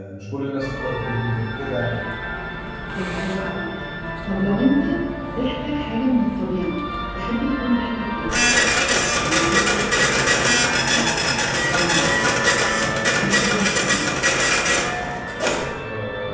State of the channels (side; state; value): both; identical; correlation 1.00